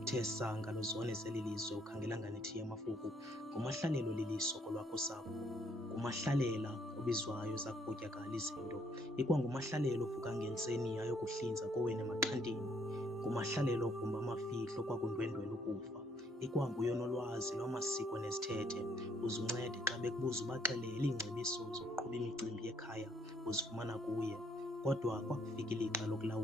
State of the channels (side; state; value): both; normal; correlation 0.67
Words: uthe sanga luzone zeli lizwe ukhangela nganethiya amafuku, nguMahlalelo liliso kolwakho usapho. NguMahlalela obizwayo zakupotyakala izinto, ikwanguMahlalela ovuka ngentseni ayokuhlinza kowenu emaxhantini. NguMahlalela ogumba amafihlo kwakundwendwela ukufa, ikwanguye onolwazi lwamasiko nezithethe. Uze uncede xa bekubuza ubaxelele iingcebiso zokuqhuba imicimbi yekhaya uzifumana kuye. Kodwa kwakufika ilixa